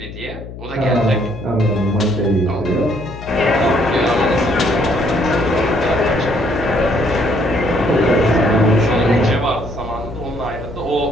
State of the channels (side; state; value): left; noise; hum, 13 dB below the sound